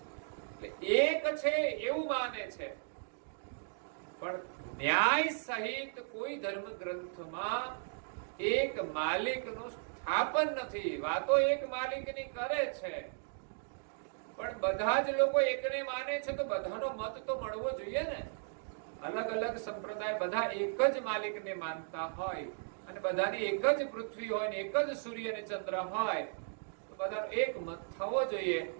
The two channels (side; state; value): left; silent; digital silence